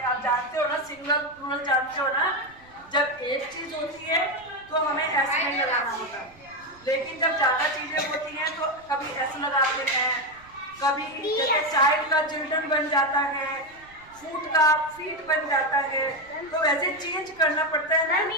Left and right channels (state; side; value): noise; right; rumble, 26 dB below the sound